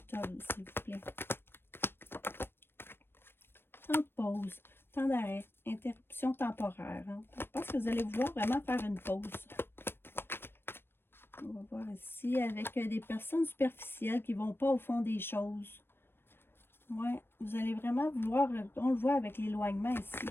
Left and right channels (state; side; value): late; right; 0.10 ms